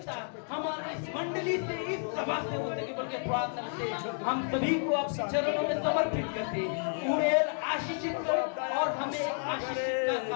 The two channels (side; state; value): right; silent; 57 dB below the other